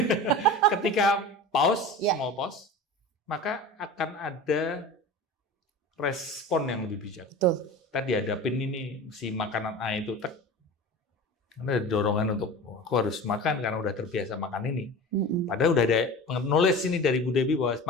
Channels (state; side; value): normal; both; correlation 0.35